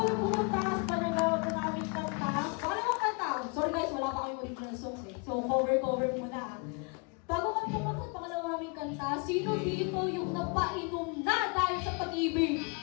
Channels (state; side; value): quieter; right; 34.0 dB